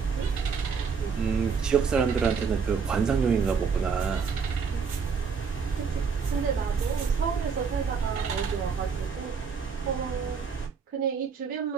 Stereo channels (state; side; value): quieter; left; 5.8 dB